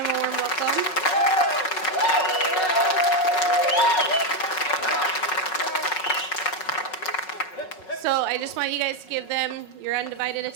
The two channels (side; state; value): right; late; 5.4 ms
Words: a warm welcome. So I just want you guys to give them your undivided